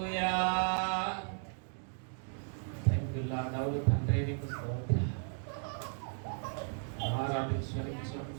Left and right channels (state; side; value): silent; left; 54 dB below the other